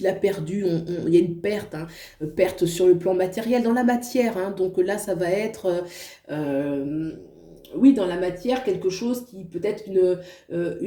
a perdu. Il y a une perte, hein, perte sur le plan matériel, dans la matière, hein. Donc là, ça va être... euh, oui, dans la matière, quelque chose qui peut être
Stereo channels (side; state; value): both; identical; correlation 1.00